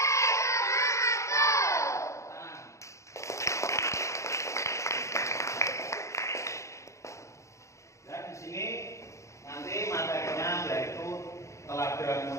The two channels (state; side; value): late; right; 0.14 ms